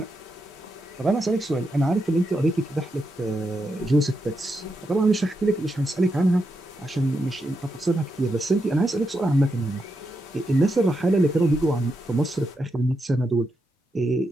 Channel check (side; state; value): both; normal; correlation 0.84